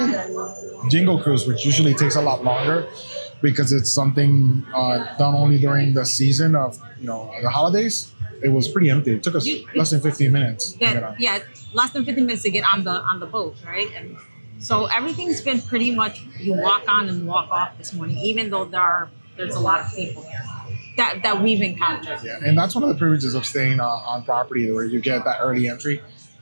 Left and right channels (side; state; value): both; inverted; correlation -1.00